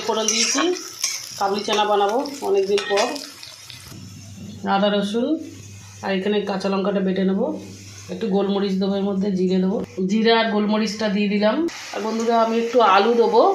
ফোড়ন দিয়েছি, কাবলি চানা বানাবো অনেক দিন পর। আদা রসুন আর এখানে কাঁচা লঙ্কাটা বেটে নেবো, একটু গোলমরিচ দেবো, এর মধ্যে জিরে দেবো, জিরে আর গোলমরিচটা দিয়ে দিলাম। আর বন্ধুরা আমি একটু আলু দেবো,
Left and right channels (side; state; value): both; identical; correlation 1.00